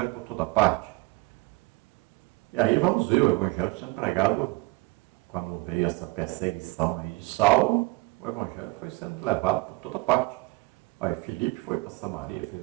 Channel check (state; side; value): quieter; left; 24.3 dB